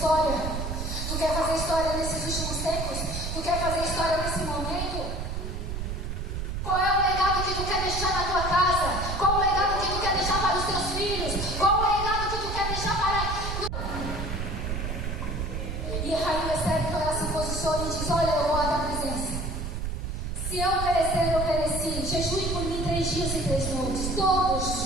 Tu quer fazer história nesses últimos tempos? Tu quer fazer história nesse momento? Qual é o legado que tu quer deixar na tua casa? Qual o legado que tu quer deixar para os teus filhos? Qual o legado que tu quer deixar para... E a Rainha Esther, então, ela se posiciona e diz: olha, eu vou à tua presença. Se eu perecer, eu pereci. Jejue por mim 3 dias e 3 noites, todos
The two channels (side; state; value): right; noise; rumble, 4 dB below the sound